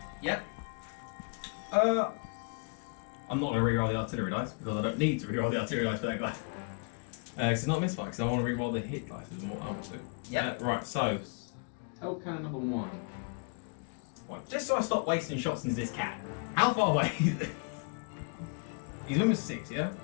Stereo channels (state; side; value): quieter; right; 37.2 dB